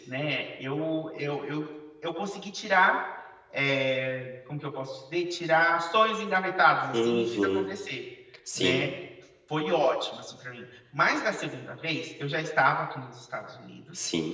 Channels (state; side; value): identical; both; correlation 1.00